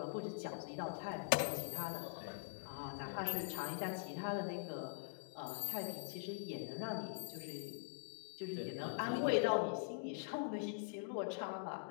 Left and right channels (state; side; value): silent; right; digital silence